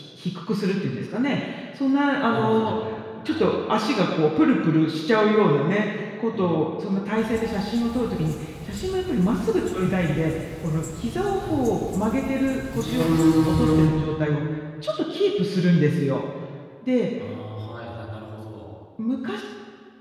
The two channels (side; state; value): both; identical; correlation 1.00